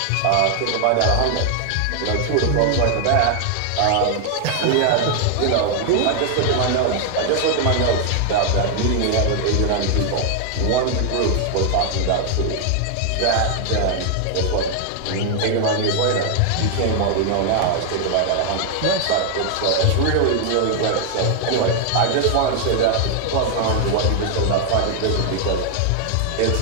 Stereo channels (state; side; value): different; both; correlation 0.00